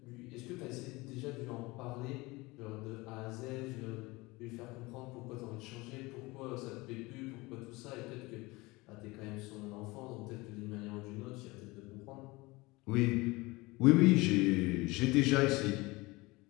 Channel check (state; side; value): quieter; right; 22.7 dB